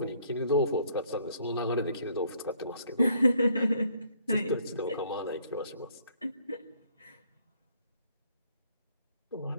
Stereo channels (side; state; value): both; inverted; correlation -0.65